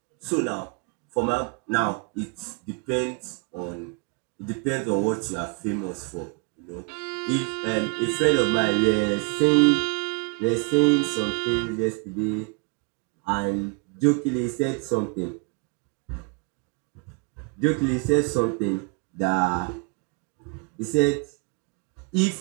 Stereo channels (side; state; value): left; quieter; 32.2 dB